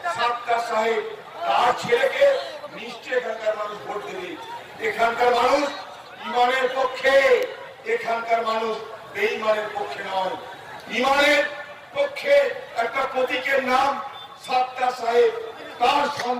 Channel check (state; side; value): identical; both; correlation 1.00